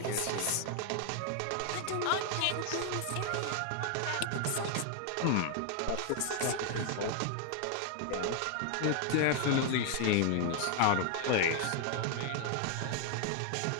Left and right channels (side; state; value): both; different; correlation 0.00